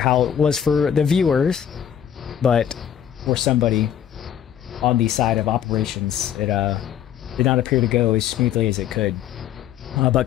it was for the viewers, but for somebody on the side of operations, it did not appear to go as smoothly as it could. But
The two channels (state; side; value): quieter; right; 9.6 dB